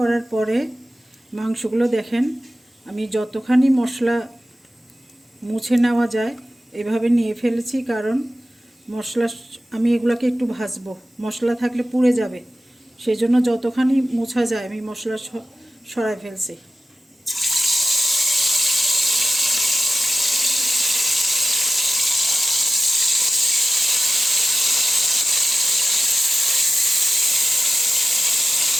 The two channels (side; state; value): both; normal; correlation 0.94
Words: পরে মাংসগুলো দেখেন, আমি যতখানি মশলা মুছে নেওয়া যায় এভাবে নিয়ে ফেলেছি, কারণ মশলা, আমি এগুলোকে একটু ভাজবো, মশলা থাকলে পুড়ে যাবে, সেই জন্য যতখানি মোছা যায় আমি মশলা সরাই ফেলছি।